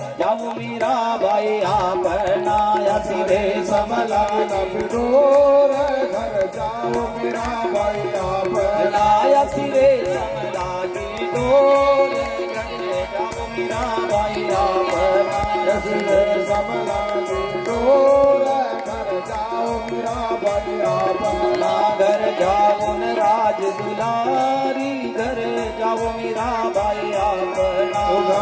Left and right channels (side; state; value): both; identical; correlation 1.00